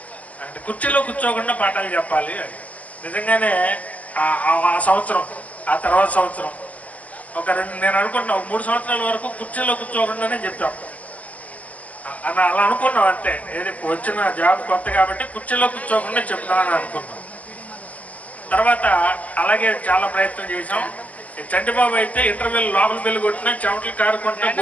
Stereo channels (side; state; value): right; late; 0.074 ms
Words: అంటే కుర్చీలో కూర్చోకుండా పాఠాలు చెప్పాలి అని. నిజంగానే ఆ సంవత్సరం, ఆ తర్వాత సంవత్సరం నేను అనుకుంటున్నా 3 సంవత్సరాల వరకు కుర్చీలో కూర్చోకుండానే చెప్పాం అలా అనుకున్నాం. అంతే, ఏది వచ్చిన జాబ్ కొత్త కాబట్టి కుర్చీలో కూర్చోకుండా చెప్తామని అనుకున్నాం. తర్వాత అలాగే చాలా ప్రయత్నం చేసాం. చంటిబాబు అయితే ఇంటర్వ్యూలు లోపల పెళ్లి కొట్టినా చెమటలు కారుకుంటా